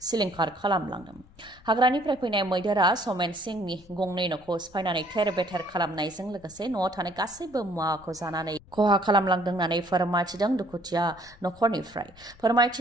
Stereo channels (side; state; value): left; noise; rumble, 25 dB below the sound